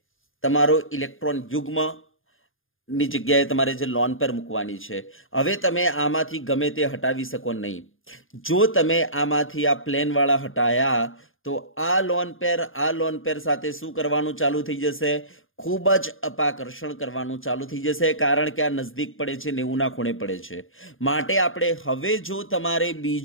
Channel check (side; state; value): right; late; 0.59 ms